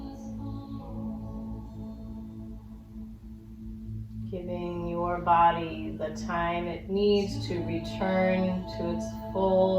Giving your body the time it needs to return to its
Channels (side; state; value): both; identical; correlation 1.00